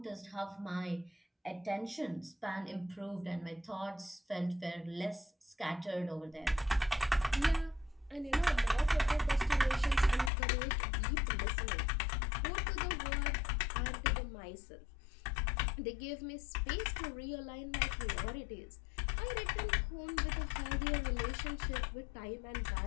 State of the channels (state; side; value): drops out; right; at 10.3 s